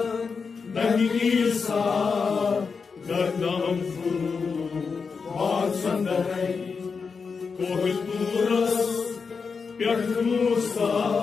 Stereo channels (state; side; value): quieter; right; 5.3 dB